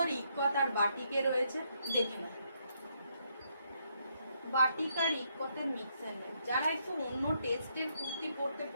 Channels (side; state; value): both; inverted; correlation -0.75